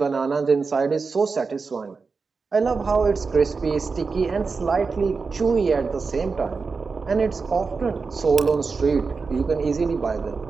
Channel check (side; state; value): left; quieter; 4.6 dB